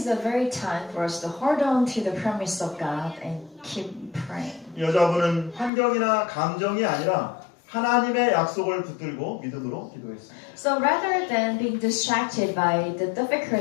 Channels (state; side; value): drops out; right; at 5.7 s